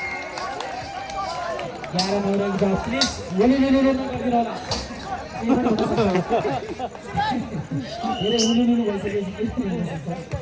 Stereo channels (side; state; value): both; identical; correlation 1.00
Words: भनेको प्लिज हुलुलुलु नगरिदिनु होला धेरै हुलुलुलु